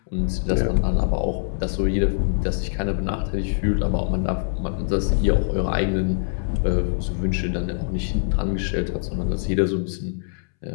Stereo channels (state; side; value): silent; right; 63 dB below the other